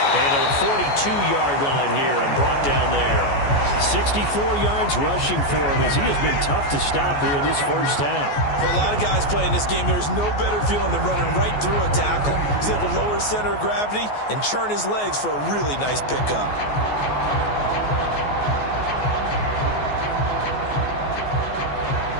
And to the 42-yard line here and brought down there. 64 yards rushing for him as he has been tough to stop here in this first half. For a lot of guys playing this game, there's no better feeling than running right through a tackle. He's able to lower his center of gravity and churn his legs for a really nice pickup.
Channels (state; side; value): late; right; 14 ms